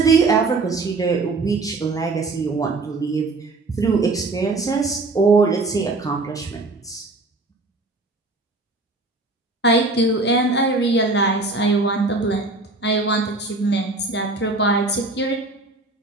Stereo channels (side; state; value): left; quieter; 3.3 dB